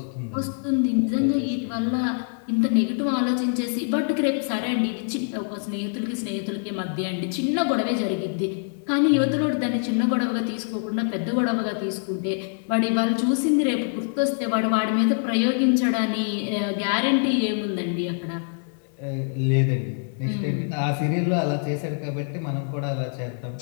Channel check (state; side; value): silent; right; 62 dB below the other